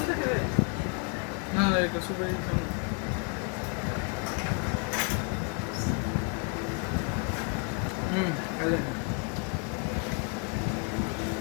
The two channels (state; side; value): quieter; right; 36.7 dB